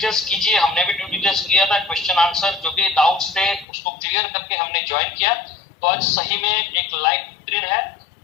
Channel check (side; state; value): right; drops out; at 3.7 s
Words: कीजिए, हमने भी ड्यू डिलिजेंस किया था, क्वेश्चन आंसर जो भी डाउट्स थे उसको क्लियर करके हमने ज्वाइन किया। तो आज सही में एक लाइफ बेहतरीन है